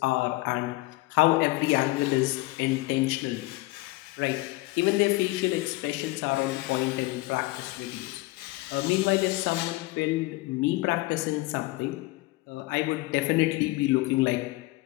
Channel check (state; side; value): quieter; right; 20.8 dB